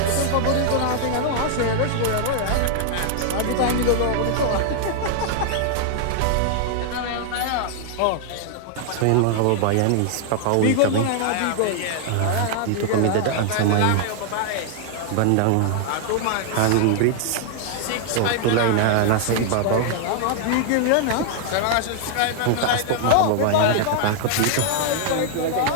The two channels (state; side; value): different; both; correlation 0.00